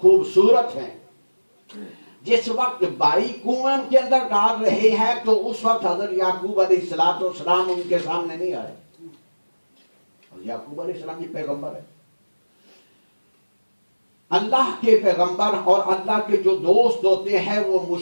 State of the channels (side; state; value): both; inverted; correlation -1.00